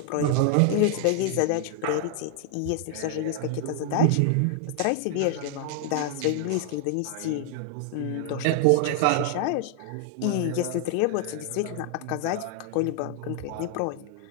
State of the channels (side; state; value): both; different; correlation 0.00